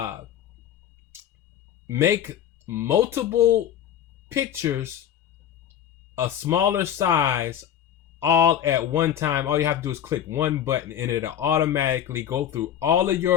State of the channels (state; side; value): quieter; right; 9.8 dB